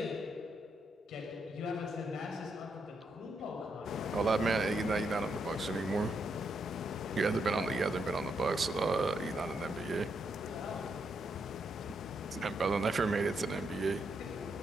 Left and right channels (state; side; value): normal; both; correlation 0.80